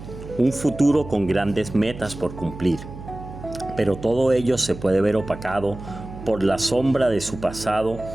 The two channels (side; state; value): right; noise; hum, 13 dB below the sound